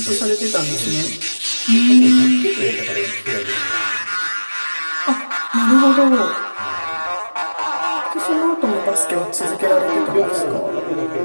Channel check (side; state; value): both; inverted; correlation -1.00